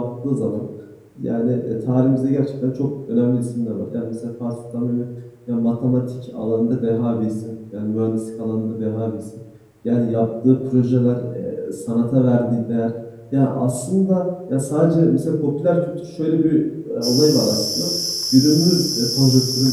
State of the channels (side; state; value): both; identical; correlation 1.00